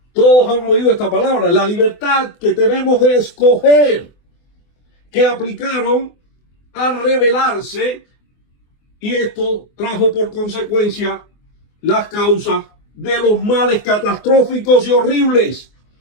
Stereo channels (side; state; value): right; late; 24 ms